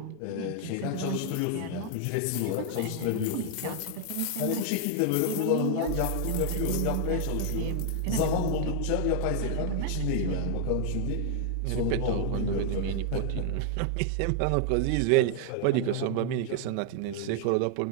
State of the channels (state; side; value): different; both; correlation 0.00